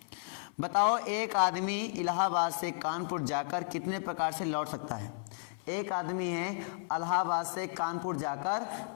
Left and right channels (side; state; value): right; silent; 56 dB below the other